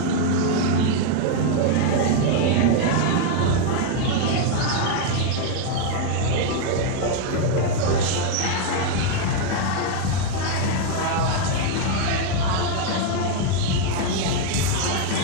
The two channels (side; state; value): both; different; correlation 0.00